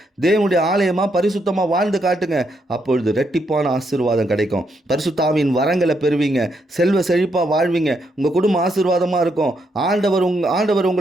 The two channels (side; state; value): both; normal; correlation 0.78